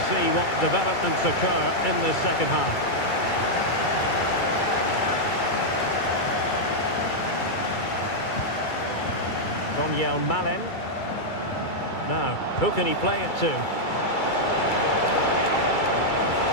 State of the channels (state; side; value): late; right; 2.3 ms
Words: see what developments occur in this second half. Daniel Malen. Now, who can he play it to?